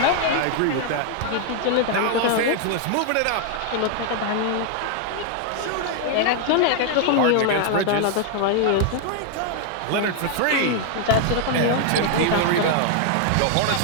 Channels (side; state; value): both; different; correlation 0.00